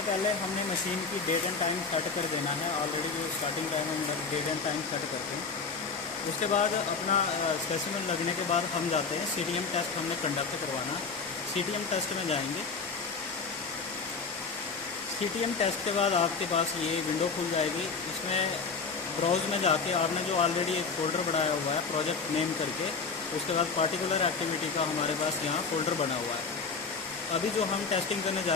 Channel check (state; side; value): quieter; right; 4.9 dB